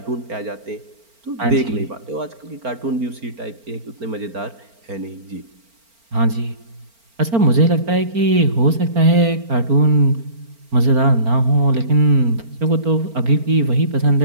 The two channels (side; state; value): left; late; 4.4 ms